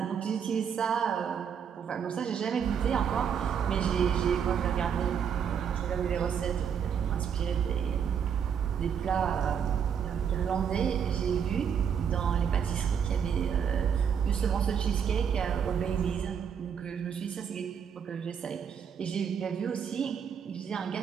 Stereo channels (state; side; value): quieter; left; 7.6 dB